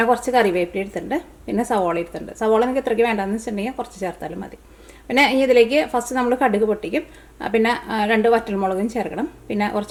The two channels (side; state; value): both; identical; correlation 1.00